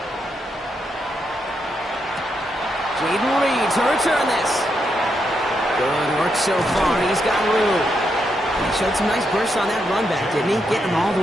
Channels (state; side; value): normal; both; correlation 0.81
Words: Jaden Reed to return this. Good work so far. He's got room. He showed some nice bursts on that run back, didn't he? Getting them all the